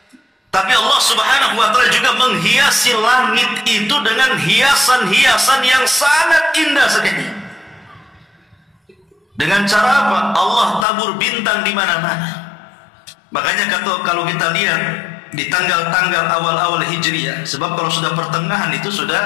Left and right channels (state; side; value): drops out; right; at 10.9 s